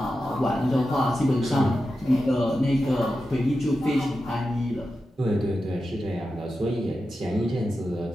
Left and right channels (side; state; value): both; normal; correlation 0.91